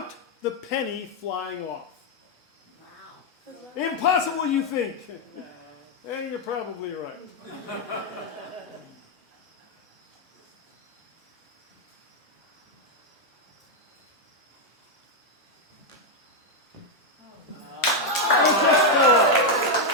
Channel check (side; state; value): both; normal; correlation 0.01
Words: the penny flying off. Wow. Impossible, you think? And you're probably right.